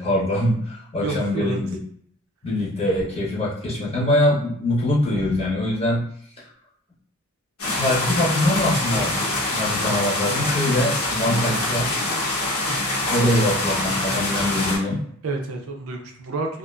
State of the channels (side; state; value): both; normal; correlation 0.42